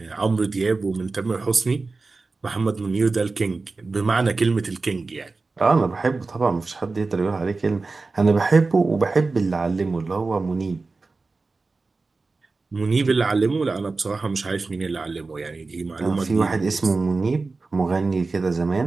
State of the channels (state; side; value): quieter; left; 3.8 dB